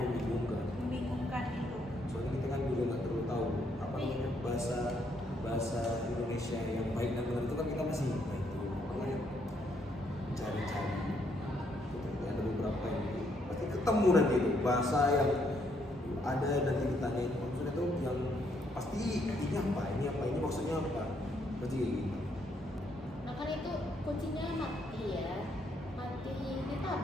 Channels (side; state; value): both; normal; correlation 0.73